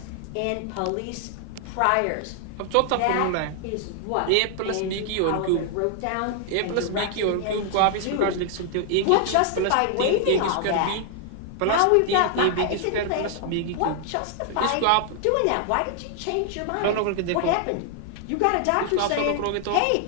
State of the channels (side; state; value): both; different; correlation 0.00